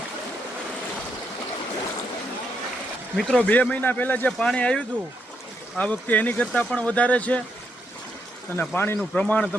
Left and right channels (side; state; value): both; normal; correlation 0.79